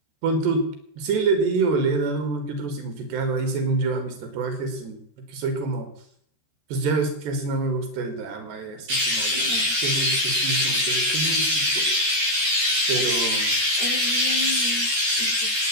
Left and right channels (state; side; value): late; left; 13 ms